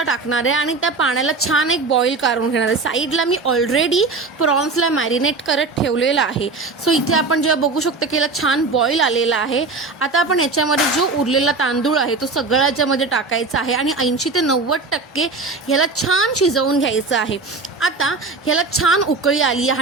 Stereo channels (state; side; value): quieter; left; 3.8 dB